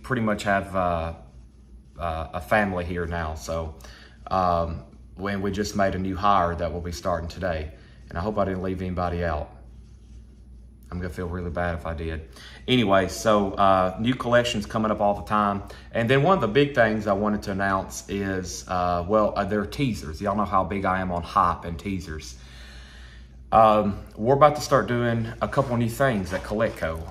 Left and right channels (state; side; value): identical; both; correlation 1.00